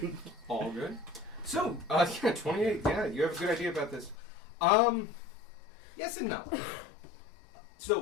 All good. So, yeah, 28. Yeah, you have a good idea about this. Yes and no.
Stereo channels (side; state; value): right; drops out; at 4.2 s